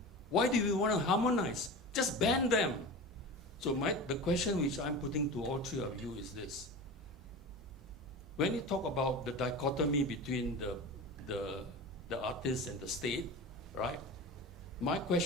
Why do we want to harmonize? Just ban them." So the question which I'm putting to all three of you is this. When you talk about the dichotomy between the artist and the state, right? My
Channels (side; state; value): both; normal; correlation 0.30